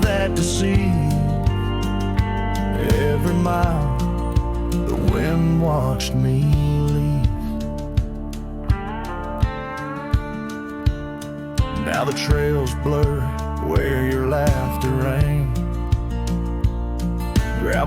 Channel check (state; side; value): identical; both; correlation 1.00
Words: deceive. Every mile the wind watched me leave. Now the trails blur where your laughter rang,